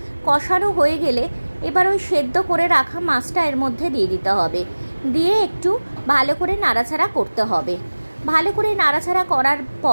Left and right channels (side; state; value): both; inverted; correlation -1.00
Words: কষানো হয়ে গেলে এবার ওই সেদ্ধ করে রাখা মাছটা এর মধ্যে দিয়ে দিতে হবে, দিয়ে একটু ভালো করে নাড়াচাড়া করতে হবে। ভালো করে নাড়াচাড়া করার